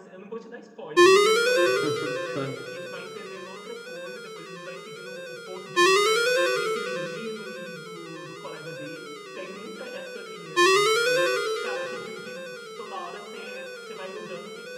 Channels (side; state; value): both; identical; correlation 1.00